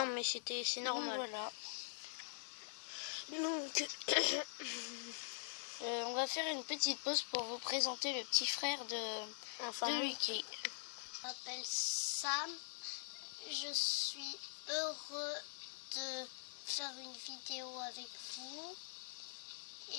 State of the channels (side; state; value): right; silent; digital silence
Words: mais c'est normal. Voilà. Donc, on va faire une petite pause pour vous présenter le petit frère de Lucky. Je m'appelle Sam. Je suis heureux de faire une vidéo avec vous.